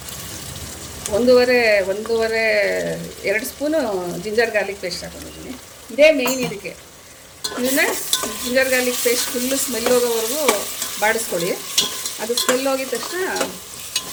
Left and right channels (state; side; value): identical; both; correlation 1.00